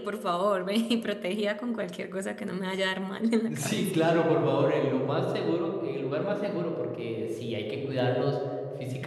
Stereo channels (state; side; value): identical; both; correlation 1.00